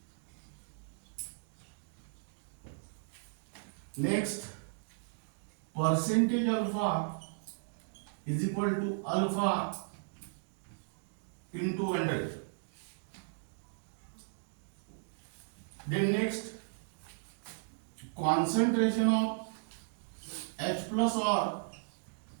Next, percentage alpha is equal to alpha into 100. Then next, concentration of H plus or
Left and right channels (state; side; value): silent; left; digital silence